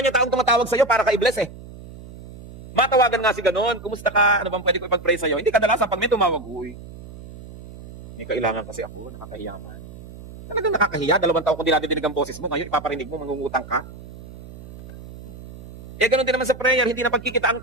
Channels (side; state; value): right; noise; hum, 16 dB below the sound